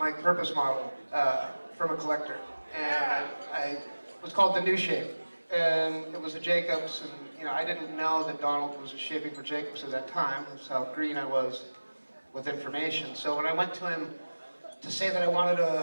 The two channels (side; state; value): both; inverted; correlation -1.00